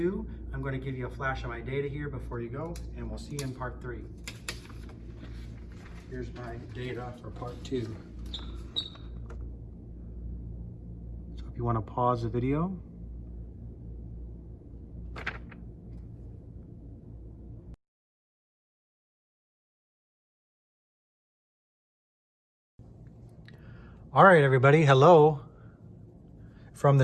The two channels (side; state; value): both; identical; correlation 1.00